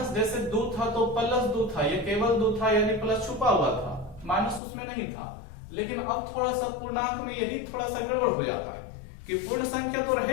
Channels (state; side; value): drops out; right; at 4.6 s